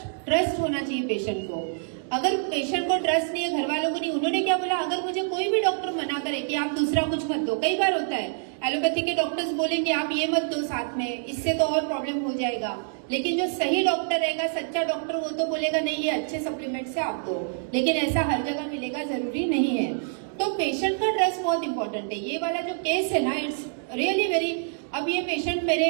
होना चाहिए पेशेंट को। अगर पेशेंट को ट्रस्ट नहीं है, घर वालों को नहीं, उन्होंने क्या बोला, अगर मुझे कोई भी डॉक्टर मना करे कि आप दूसरा कुछ मत दो, कई बार होता है एलोपैथी के डॉक्टर्स बोलेंगे आप ये मत दो साथ में, इससे तो और प्रॉब्लम हो जाएगा। लेकिन जो सही डॉक्टर रहेगा, सच्चा डॉक्टर, वो तो बोलेगा नहीं ये अच्छे सप्लीमेंट से आप दो। लेकिन ऐसा हर जगह मिलेगा जरूरी नहीं है। तो पेशेंट का ट्रस्ट बहुत इंपॉर्टेंट है। ये वाला जो केस है ना, इट्स रियली वेरी। अब ये पेशेंट मेरे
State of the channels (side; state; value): left; silent; digital silence